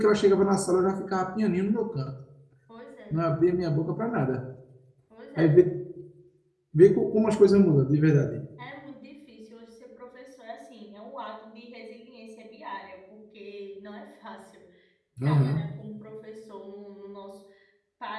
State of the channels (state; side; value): identical; both; correlation 1.00